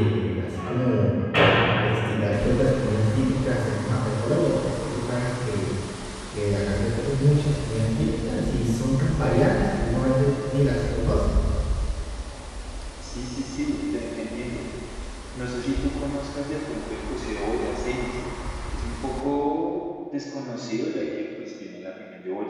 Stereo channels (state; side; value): identical; both; correlation 1.00